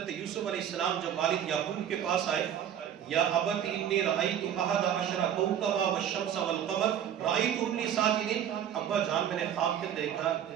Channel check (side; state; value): left; quieter; 9.7 dB